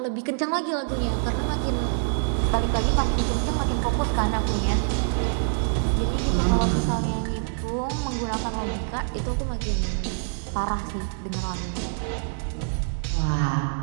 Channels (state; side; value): silent; left; 61 dB below the other